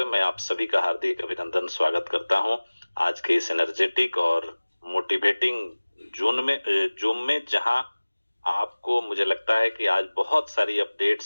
मैं आप सभी का हार्दिक अभिनंदन स्वागत करता हूं आज के इस एनर्जेटिक और मोटिवेटिंग जूम में, जहां आपको मुझे लगता है कि आज बहुत सारी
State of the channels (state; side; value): inverted; both; correlation -1.00